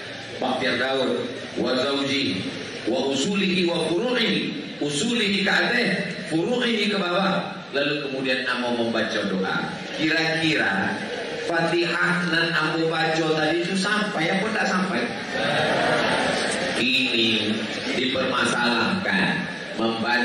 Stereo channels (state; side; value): identical; both; correlation 1.00